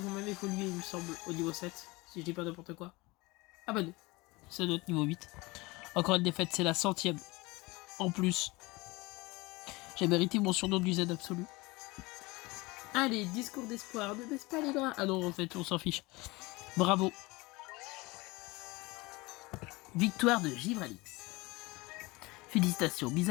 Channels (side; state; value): right; quieter; 23.2 dB